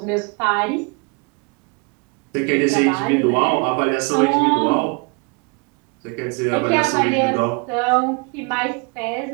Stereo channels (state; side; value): quieter; left; 31.4 dB